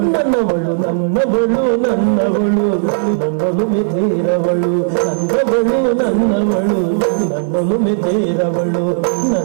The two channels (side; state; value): left; silent; digital silence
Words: ನನ್ನವಳು ನನ್ನವಳು ನನ್ನವಳು ನನ್ನಲು ಮೆತೆಯರವಳು, ನನ್ನವಳು ನನ್ನವಳು ನನ್ನಲು ಮೆತೆಯರವಳು,